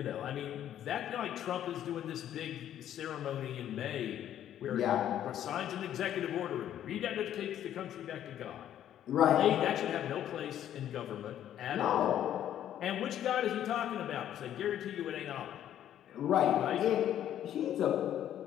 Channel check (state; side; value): quieter; right; 11.0 dB